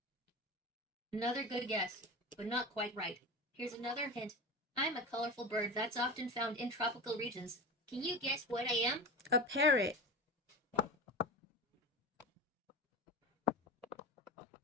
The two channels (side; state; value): both; normal; correlation 0.28